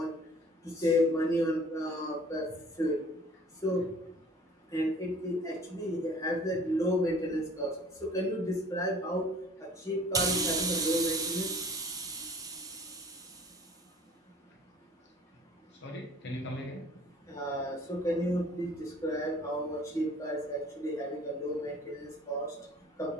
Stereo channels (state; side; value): normal; both; correlation 0.51